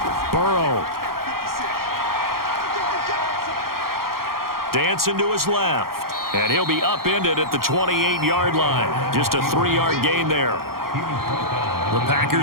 Burrow. Dancing to his left. And he'll be upended at the 28-yard line. Just a 3-yard gain there. The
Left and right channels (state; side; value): late; left; 0.93 ms